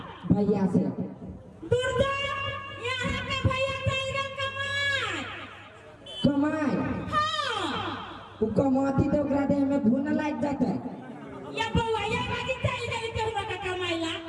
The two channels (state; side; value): identical; both; correlation 1.00